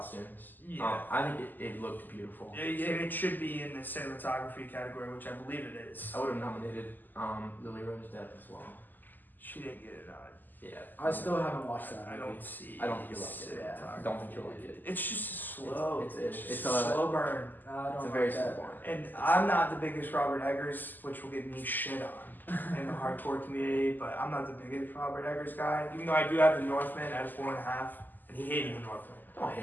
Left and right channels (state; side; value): late; right; 0.087 ms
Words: Yeah. I think it looked beautiful. It should be in the cinematography category, which I believe it is. I would have nominated Lily Rose Depp as well. She didn't get it on. Yeah. I still haven't watched that. I movie. don't see. I don't think you'll like it. Yeah. I don't think you'll like it. It's just slow. It's just a slow burn. I don't It's a like very that. slow one. And I'm not the biggest Robert Eggers, which will get me shit on in the hardcore community, but I'm not the biggest Robert Eggers guy. Even though I do have the Northman at a 4.5, and he hated the Northman. I don't